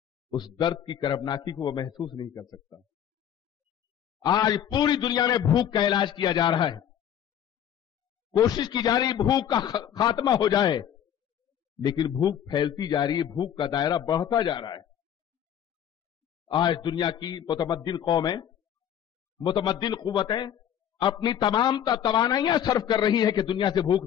اس درد کی کربناکی کو وہ محسوس نہیں کر سکتا. آج پوری دنیا میں بھوک کا علاج کیا جا رہا ہے، کوشش کی جا رہی بھوک کا خاتمہ ہو جائے، لیکن بھوک پھیلتی جا رہی ہے، بھوک کا دائرہ بڑھتا جا رہا ہے. آج دنیا کی متمدن قومیں، متمدن قوتیں اپنی تمام توانائیاں صرف کر رہی ہیں کہ دنیا سے بھوک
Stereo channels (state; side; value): quieter; right; 9.8 dB